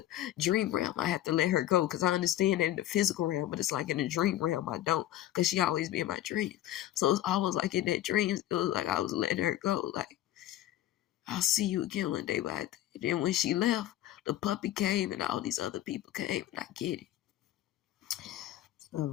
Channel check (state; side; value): quieter; right; 13.6 dB